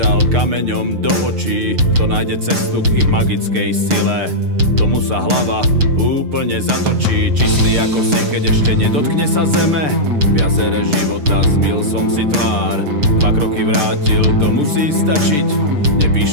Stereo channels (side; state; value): left; late; 6.7 ms